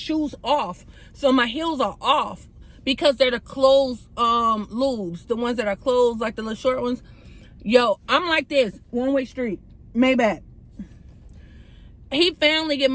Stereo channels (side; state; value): both; identical; correlation 1.00